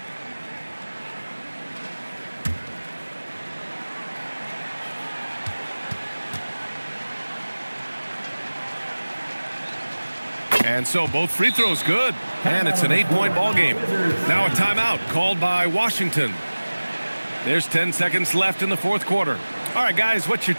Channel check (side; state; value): both; inverted; correlation -1.00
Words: And so both free throws good, and it's an 8-point ball game. Now a timeout called by Washington. There's 10 seconds left in the fourth quarter. All right, guys, what's your